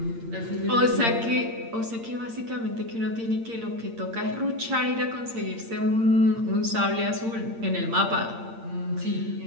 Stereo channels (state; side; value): late; left; 8.7 ms